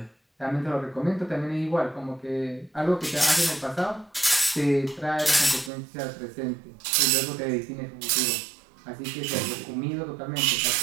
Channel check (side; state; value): left; drops out; at 5.7 s